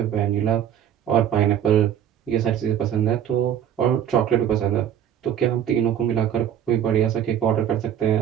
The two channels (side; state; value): left; quieter; 9.8 dB